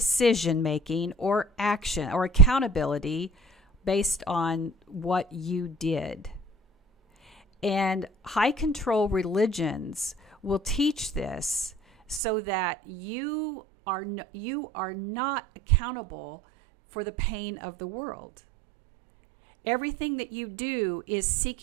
making or action or accountability based on what you did. And high control religions will teach this so that you are not accountable for the pain of the world. Everything that you do is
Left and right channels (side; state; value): left; drops out; at 12.2 s